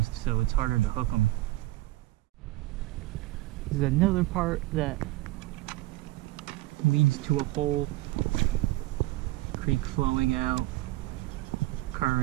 so it's harder to hook them. This is another part that leads to a hole. Creek flowing out,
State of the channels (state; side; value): quieter; left; 17.7 dB